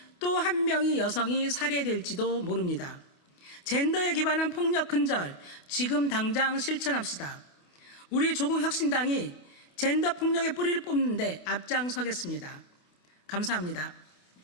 또 한 명의 여성이 살해될지도 모릅니다. 젠더에 기반한 폭력 근절, 지금 당장 실천합시다. 우리 조국혁신당이 젠더 폭력의 뿌리를 뽑는 데 앞장서겠습니다. 감사합니다.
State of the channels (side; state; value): right; late; 28 ms